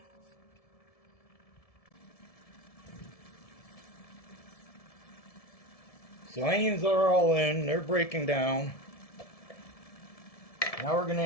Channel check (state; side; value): late; right; 1.7 ms